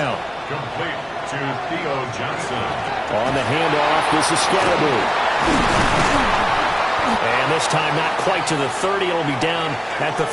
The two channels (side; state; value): both; identical; correlation 1.00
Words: Complete to Theo Johnson. On the handoff, this is Scatterby. And this time not quite to the 30. It'll be down at the